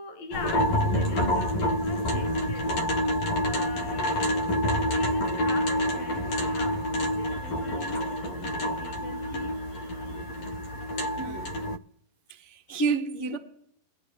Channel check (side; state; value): right; late; 11 ms